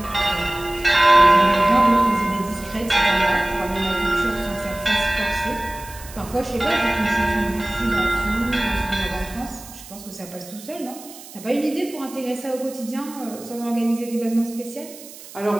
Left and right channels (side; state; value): right; noise; hiss, 17 dB below the sound